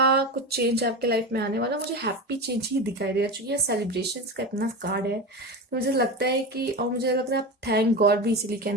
कुछ चेंज आपके लाइफ में आने वाला, मुझे हैप्पी चेंज ही दिखाई दे रहा है। चूंकि सेलिब्रेशन का इतना कार्ड है, तो मुझे लगता है कि, और मुझे लग रहा है आप थैंक गॉड भी इसीलिए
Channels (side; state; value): both; normal; correlation 0.23